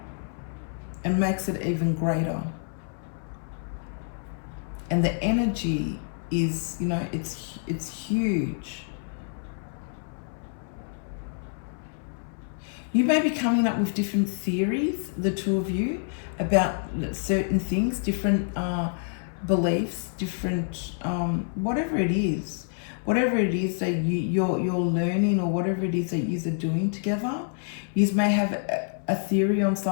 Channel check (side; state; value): right; silent; 60 dB below the other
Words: And makes it even greater. And the energy is, you know, it's huge. You may be coming up with different theories, the two of you, about certain things, different beliefs, different, whatever it is. whatever it is that you're learning, or whatever it is that you're doing together, you may have a theory on